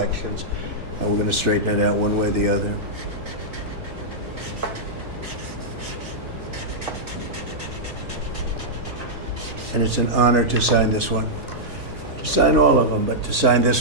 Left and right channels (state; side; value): normal; both; correlation -0.08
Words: and we're going to straighten it out one way or the other. and it's an honor to sign this one. To sign all of them, but to sign